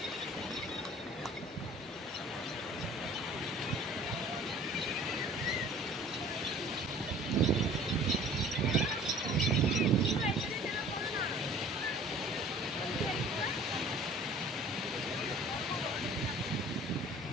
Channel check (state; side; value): normal; both; correlation 0.48